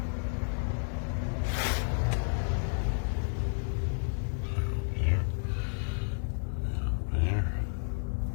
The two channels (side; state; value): right; silent; digital silence